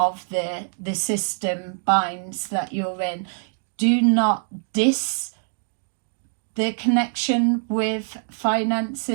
the system binds that you're in. Do not diss the connection with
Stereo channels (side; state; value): left; silent; 59 dB below the other